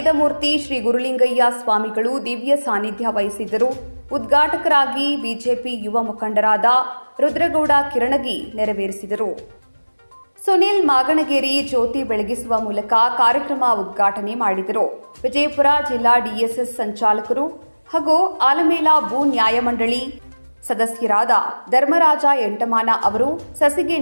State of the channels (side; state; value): both; inverted; correlation -1.00